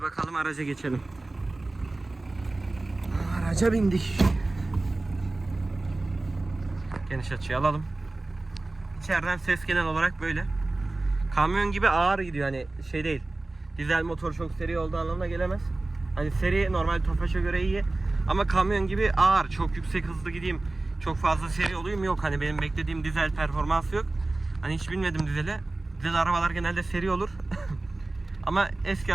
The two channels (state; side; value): quieter; left; 3.0 dB